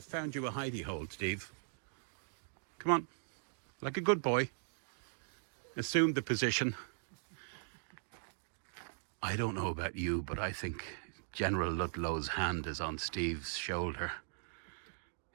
found you a hidey hole, Steve. Come on. Like a good boy. Assume the position. I don't know about you, but I think General Ludlow's hand is on Steve's shoulder.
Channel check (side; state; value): left; silent; digital silence